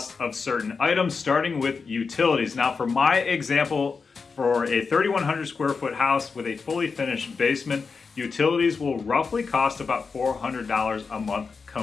of certain items, starting with utilities. Now, for my example, for a 3,100 square foot house with a fully finished basement, utilities will roughly cost about $400 a month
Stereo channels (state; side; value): quieter; right; 4.9 dB